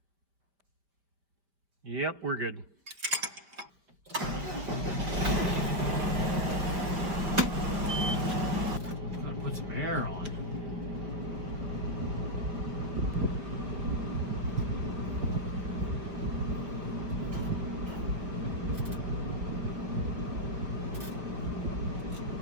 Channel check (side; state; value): left; late; 5.0 ms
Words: Yep, we're good. Gotta put some air on.